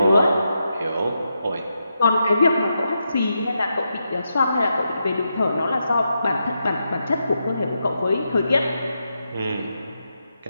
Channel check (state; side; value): inverted; both; correlation -0.85